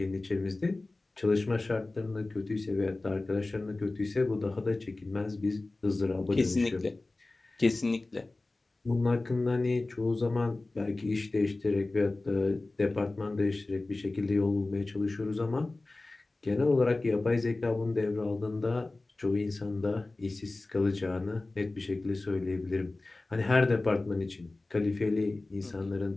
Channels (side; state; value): right; quieter; 3.1 dB